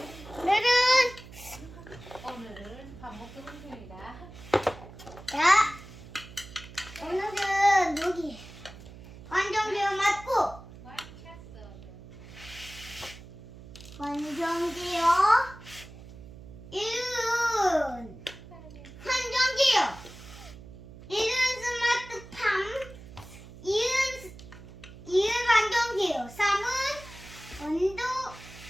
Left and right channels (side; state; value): right; noise; hum, 17 dB below the sound